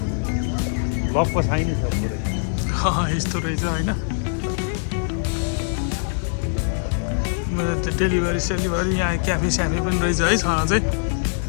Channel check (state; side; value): silent; right; digital silence